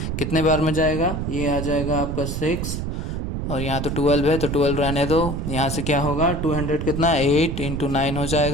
कितने बार में जाएगा, ये आ जाएगा आपका 6, और यहाँ तो 12 है तो 12 रहने दो। यहाँ से क्या होगा 200 कितना 8 इंटू 9 हो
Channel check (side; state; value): right; noise; rumble, 3 dB below the sound